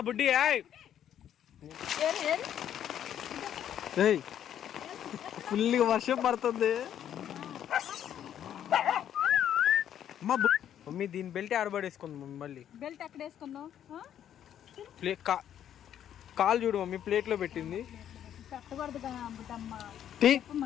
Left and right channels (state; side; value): quieter; right; 10.1 dB